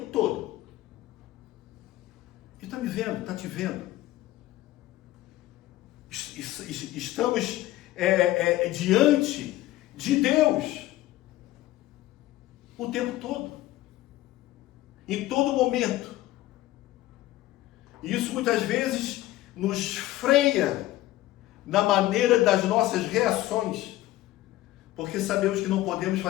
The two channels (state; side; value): quieter; right; 16.1 dB